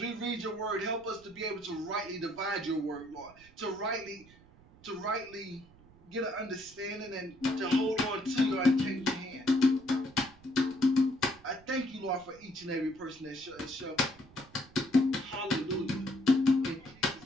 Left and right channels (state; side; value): noise; right; rumble, 25 dB below the sound